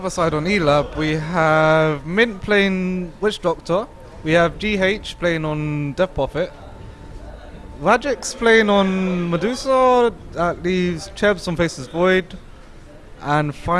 side on Elab, we have Mint playing Witch Doctor, we have GH playing on Death Prophet, Rajix playing on Medusa, that leaves Chebs on Faceless Void, and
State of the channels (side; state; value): both; identical; correlation 1.00